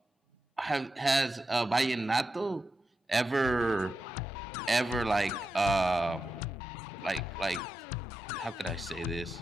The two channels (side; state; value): both; normal; correlation 0.89